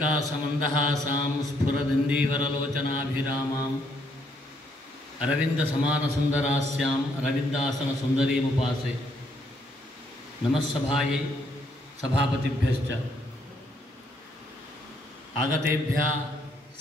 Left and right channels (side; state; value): both; normal; correlation 0.72